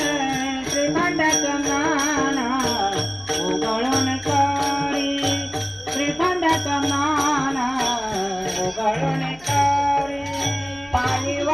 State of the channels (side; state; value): left; noise; hum, 25 dB below the sound